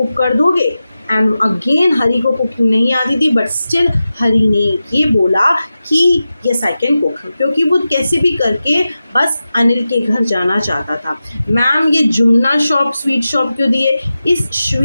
कर दोगे? एंड अगेन हरी को कुकिंग नहीं आती थी, बट स्टिल हरी ने ये बोला कि यस आई कैन कुक, क्योंकि वो कैसे भी करके बस अनिल के घर जाना चाहता था। मैम ये जुमना शॉप स्वीट शॉप क्यों दिए? इस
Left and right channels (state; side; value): inverted; both; correlation -0.93